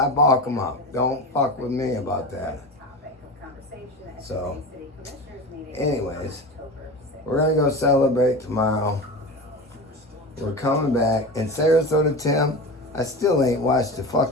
bulk them up. Don't fuck with me about that. So, anyways, we're gonna go celebrate tomorrow. We're coming back. And Sarasota Tim, I still ain't watched the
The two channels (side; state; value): both; normal; correlation 0.28